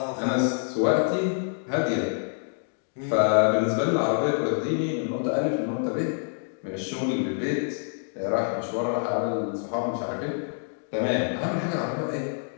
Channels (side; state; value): right; silent; digital silence